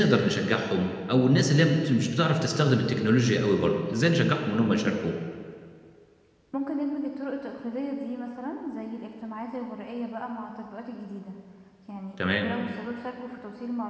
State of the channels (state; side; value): identical; both; correlation 1.00